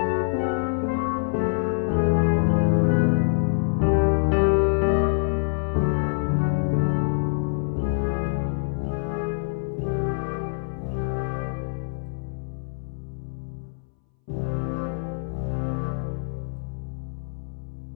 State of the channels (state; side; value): silent; right; 61 dB below the other